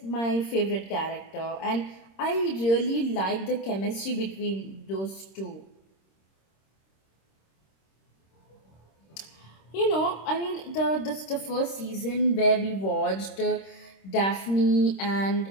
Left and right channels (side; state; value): right; late; 26 ms